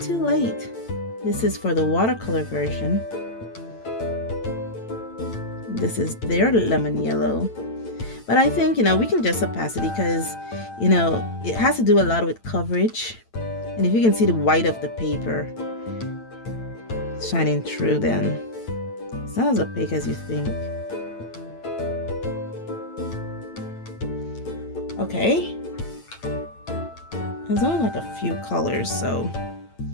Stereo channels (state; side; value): late; right; 8.9 ms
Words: late. This is for the watercolor version. This is their lemon yellow. But I think, we can just opacity because, it has to do a lot with coverage. And if you can see the white of the paper shining through, then it's not as opaque as you think. Okay. There's only like a few colors, so.